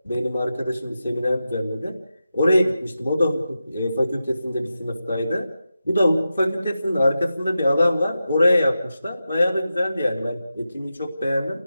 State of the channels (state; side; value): inverted; both; correlation -0.91